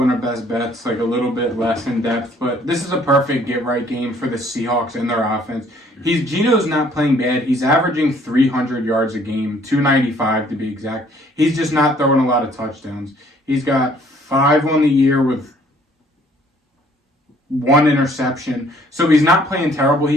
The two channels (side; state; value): both; normal; correlation 0.60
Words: in our best bets, like a little bit less in depth. But this is a perfect get-right game for the Seahawks and their offense. Geno's not playing bad. He's averaging 300 yards a game, 295 to be exact. He's just not throwing a lot of touchdowns. He's got 5 on the year with 1 interception. So he's not playing terrible.